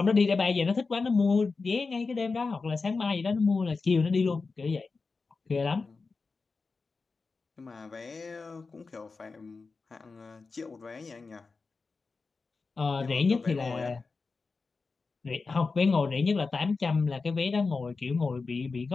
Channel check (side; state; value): right; quieter; 4.3 dB